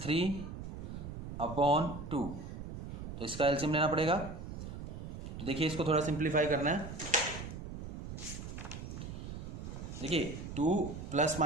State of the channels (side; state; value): right; noise; rumble, 8 dB below the sound